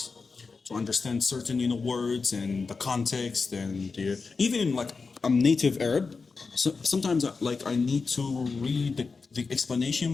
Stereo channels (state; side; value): quieter; right; 4.6 dB